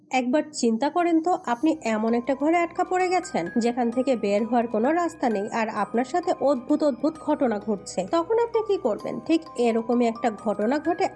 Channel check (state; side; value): identical; both; correlation 1.00